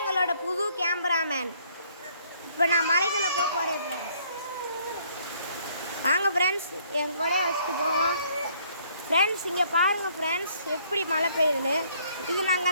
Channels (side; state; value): both; inverted; correlation -0.64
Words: எங்களோட புது கேமராமேன். இப்போ நான் மலைக்குள்ளே போக போகிறேன் ஃப்ரெண்ட்ஸ். வாங்க ஃப்ரெண்ட்ஸ், என் கொடையை வச்சுட்டு போவோம் ஃப்ரெண்ட்ஸ். இங்கே பாருங்கள் ஃப்ரெண்ட்ஸ், எப்படி மழை பெய்யுதுன்னு. இது நாங்கள்